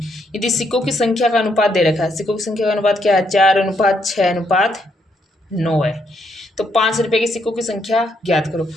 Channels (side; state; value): both; normal; correlation 0.75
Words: यदि सिक्कों की संख्या का अनुपात दे रखा है, सिक्कों की संख्या का अनुपात क्या है, 4:6:9 है। तो 5 रुपये के सिक्कों की संख्या ज्ञात करो।